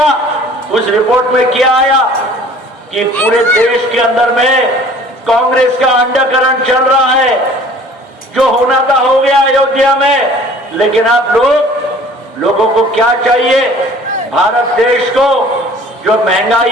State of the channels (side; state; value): both; normal; correlation 0.50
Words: उस रिपोर्ट में क्या आया कि पूरे देश के अंदर में कांग्रेस का अंडरकरण चल रहा है। जो होना था हो गया अयोध्या में, लेकिन आप लोगों को क्या चाहिए? भारत देश को जो महंगाई